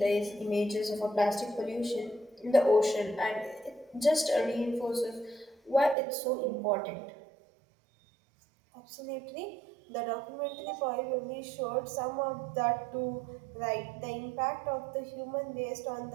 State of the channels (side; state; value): left; drops out; at 6.0 s